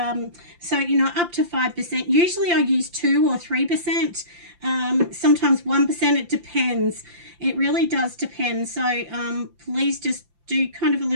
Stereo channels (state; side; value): late; left; 5.8 ms